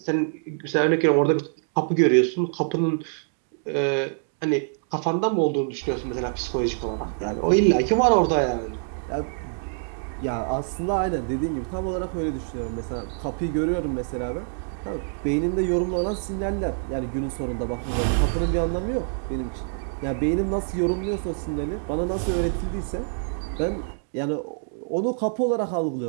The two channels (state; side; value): silent; left; digital silence